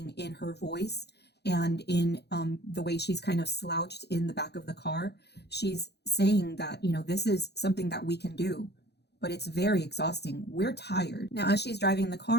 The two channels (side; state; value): right; late; 0.48 ms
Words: in her voice and in the way she's kind of slouched in the back of the car, she's saying that, this is something that we can do, but it's very exhausting. We're tired. Now, as she's driving the